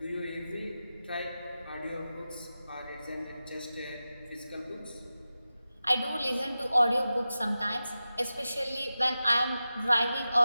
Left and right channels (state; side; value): inverted; both; correlation -0.93